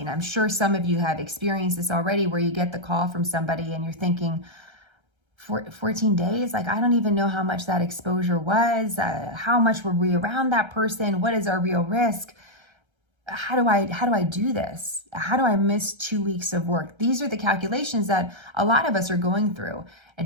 I'm sure some of you have experienced this already, where you get the call from somebody and you're thinking, 14 days? Like, I don't even know how much that exposure was. How much were we around that person? What is our real risk? How do I do this? How do I miss 2 weeks of work? These are the calculations that a lot of us are going through.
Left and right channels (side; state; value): left; late; 1.3 ms